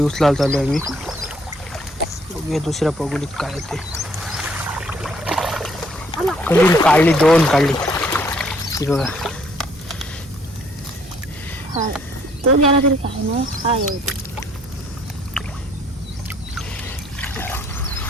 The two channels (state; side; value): normal; both; correlation 0.64